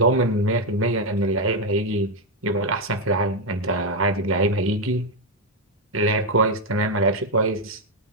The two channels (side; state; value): both; normal; correlation 0.04